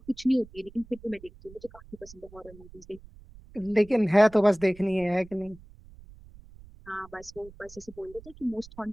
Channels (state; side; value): noise; right; rumble, 21 dB below the sound